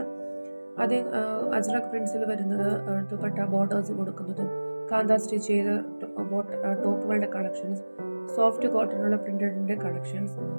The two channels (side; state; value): both; inverted; correlation -1.00